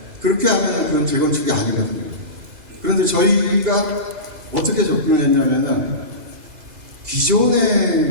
그렇게 하면은 그건 재건축이 아니거든요. 그런데 저희가 어떻게 접근을 했냐면은,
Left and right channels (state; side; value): late; left; 2.0 ms